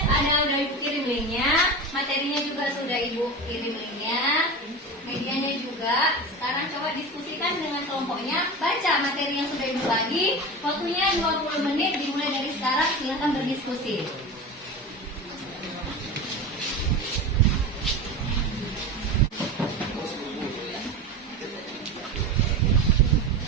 udah ibu kirim linknya, materinya juga sudah ibu kirim linknya, medianya juga. Sekarang coba diskusikan dengan kelompoknya, baca materi yang sudah ibu bagi. Waktunya 20 menit dimulai dari sekarang, silakan berdiskusi.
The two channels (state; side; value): normal; both; correlation 0.27